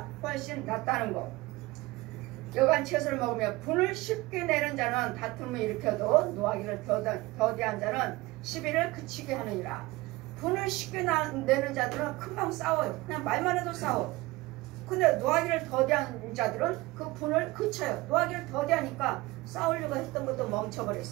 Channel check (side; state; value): left; quieter; 20.8 dB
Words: 훨씬 낫다는 거. 여간 채소를 먹으며 분을 쉽게 내는 자는 다툼을 일으켜도 노하기를 더디한 자는 시비를 그치게 하느니라. 분을 쉽게 내는 자들은 금방 싸워요. 그냥 말만 해도 싸워. 근데 노하기를 더디한 자들은 그 분을 그쳐요. 노하기를 더디하니까 싸우려고 했던 것도